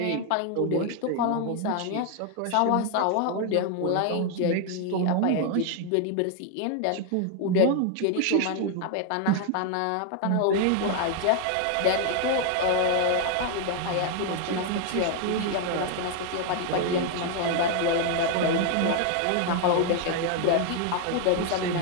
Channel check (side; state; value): both; different; correlation 0.00